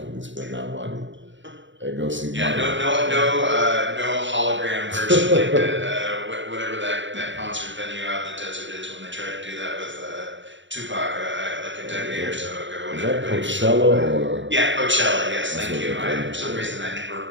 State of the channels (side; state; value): left; late; 0.54 ms